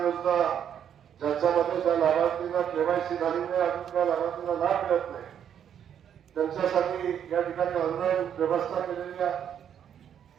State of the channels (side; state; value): left; quieter; 9.0 dB